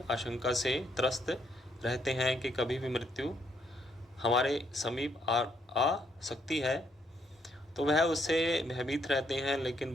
आशंका से त्रस्त रहते हैं कि कभी भी मृत्यु हमारे समीप आ सकती है। तो वह उससे भयभीत रहते हैं। लेकिन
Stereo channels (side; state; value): both; normal; correlation 0.72